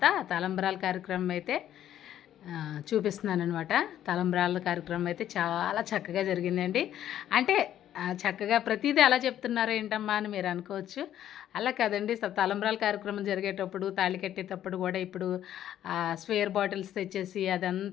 తలంబ్రాల కార్యక్రమం అయితే చూపిస్తున్నాను అనమాట. తలంబ్రాల కార్యక్రమం అయితే చాలా చక్కగా జరిగిందండి. అంటే చక్కగా ప్రతిదీ అలా చెప్తున్నారు ఏంటమ్మా అని మీరు అనుకోవచ్చు. అలా కదండి, తలంబ్రాల కార్యక్రమం జరిగేటప్పుడు తాళి కట్టేటప్పుడు కూడా ఇప్పుడు స్వేర్ బాటిల్స్ తెచ్చేసి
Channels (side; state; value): right; quieter; 11.3 dB